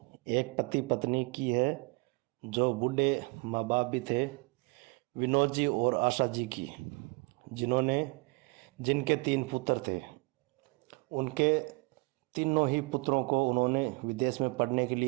एक पति पत्नी की है जो बूढ़े माँ बाप भी थे, विनोद जी और आशा जी की, जिनके 3 पुत्र थे। उनके तीनों ही पुत्रों को उन्होंने विदेश में पढ़ने के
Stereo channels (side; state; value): left; quieter; 29.0 dB